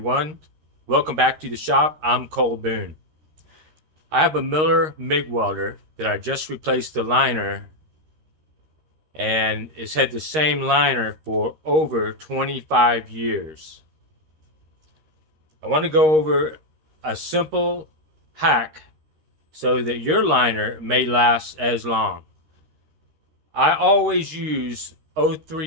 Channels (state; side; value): late; left; 13 ms